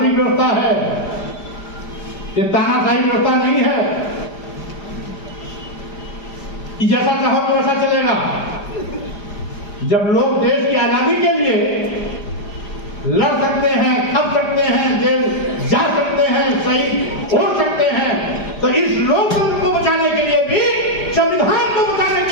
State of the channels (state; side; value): late; right; 4.9 ms